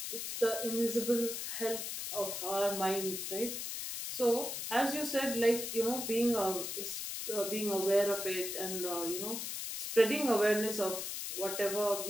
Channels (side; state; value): left; noise; hiss, 4 dB below the sound